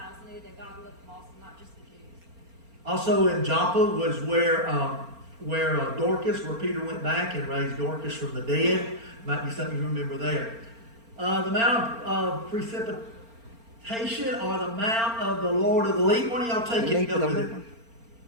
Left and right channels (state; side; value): late; left; 4.4 ms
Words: knew that God loved them also, not just the Jews. Also in Joppa was where Dorcas, where Peter went back and raised Dorcas from the dead. Might be something you remember there. The Mount of Precipitation or the Mount of the Lord of the Leap. One of y'all take it and go with it.